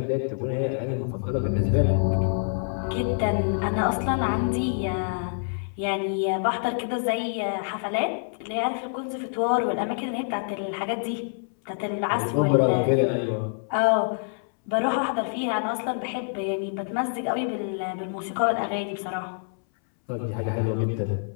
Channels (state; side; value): silent; right; 61 dB below the other